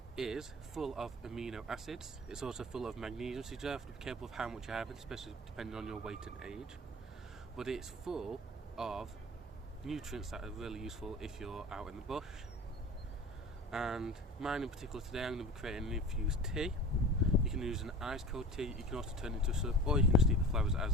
is full of amino acids. It's also full of magnesium, so you have to be careful of how much you have, especially depending on your weight and age. But it's full of nutrients that are really useful if you're out in the bush. And mine in particular today, I'm going to be creating an infused tea. You can use an ice cold tea, you can also turn it into a syrup, or you can just eat the flowers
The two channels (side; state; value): both; normal; correlation 0.38